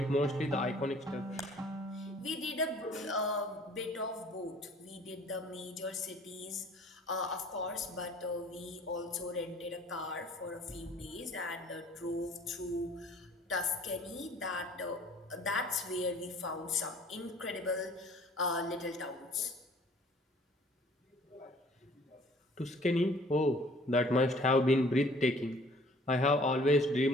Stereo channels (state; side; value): normal; both; correlation 0.53